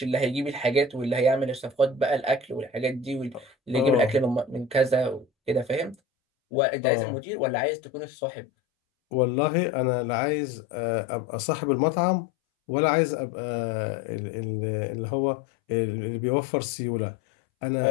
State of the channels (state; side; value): drops out; right; at 6.0 s